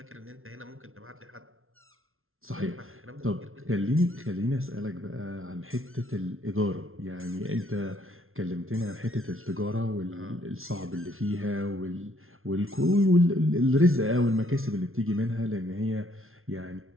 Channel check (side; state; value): left; late; 0.61 ms